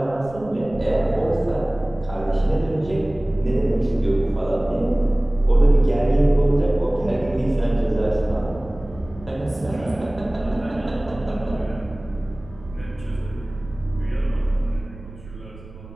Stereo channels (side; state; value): right; noise; rumble, 18 dB below the sound